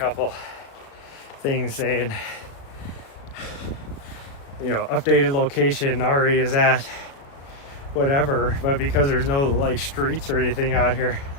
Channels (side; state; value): right; late; 36 ms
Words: things saying, you know, updated location, Ari is at whatever, but because there's no like streets or anything out here,